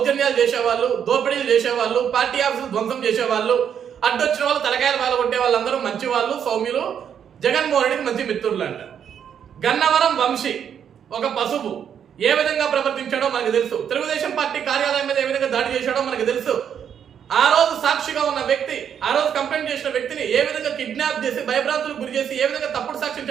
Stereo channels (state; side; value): quieter; left; 8.4 dB